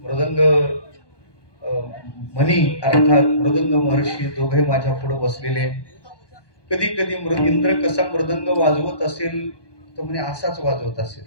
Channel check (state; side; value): late; right; 1.2 ms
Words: मृदंग मनी अर्थात मृदंग महर्षी दोघे माझ्या पुढे बसलेले. कधी कधी इंद्र कसा मृदंग वाजवत असेल तर म्हणे असाच वाजवत असेल